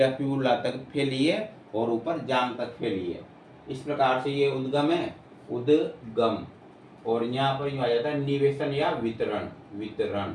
फिबुला तक फैली है और ऊपर जांघ तक फैली है। इस प्रकार से ये उद्गम है, उद्गम। और यहाँ पर यूँ आ जाता है निवेशन या वितरण, वितरण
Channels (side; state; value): both; identical; correlation 1.00